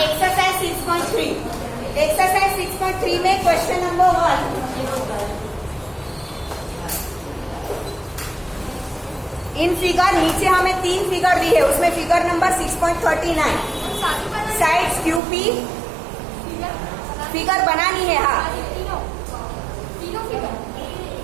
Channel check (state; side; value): drops out; left; at 15.2 s